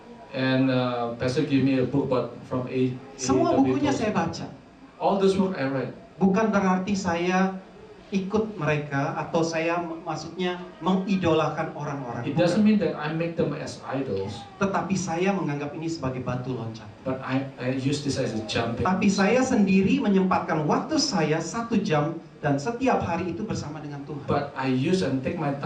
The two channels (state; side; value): identical; both; correlation 1.00